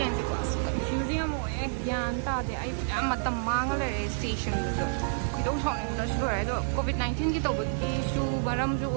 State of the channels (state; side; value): silent; left; digital silence